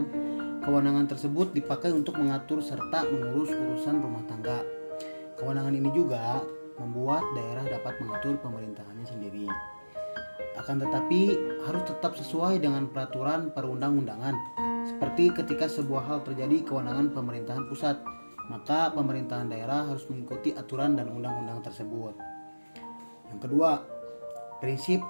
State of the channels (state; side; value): inverted; both; correlation -1.00